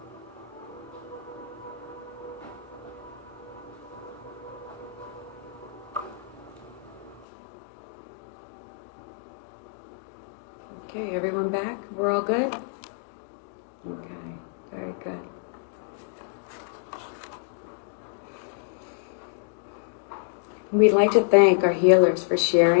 Okay, everyone back? We're all good? Okay, very good. We'd like to thank our healers for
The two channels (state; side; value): drops out; right; at 7.2 s